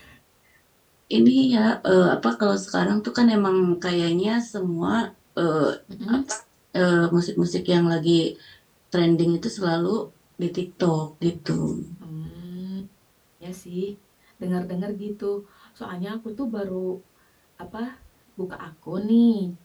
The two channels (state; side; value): identical; both; correlation 1.00